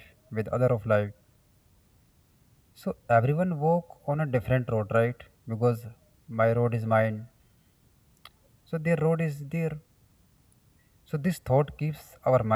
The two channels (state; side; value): identical; both; correlation 1.00